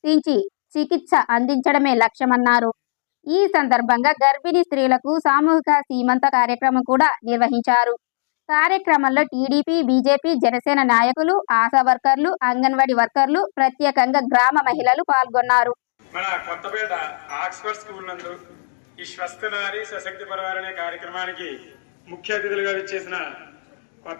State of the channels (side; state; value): right; silent; digital silence